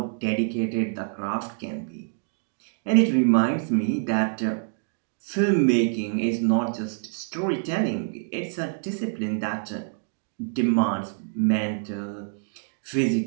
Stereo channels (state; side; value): silent; left; digital silence